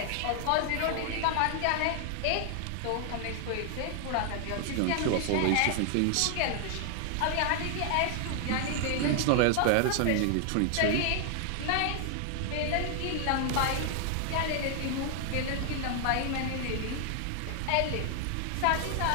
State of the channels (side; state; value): both; different; correlation 0.00